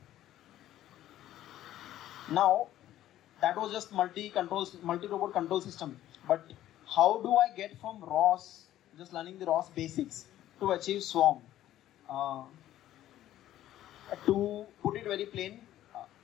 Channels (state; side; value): quieter; right; 13.1 dB